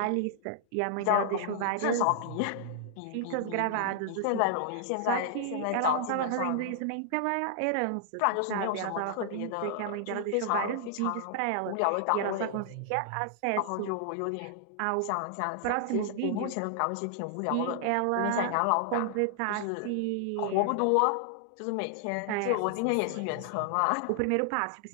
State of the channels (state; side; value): different; both; correlation -0.01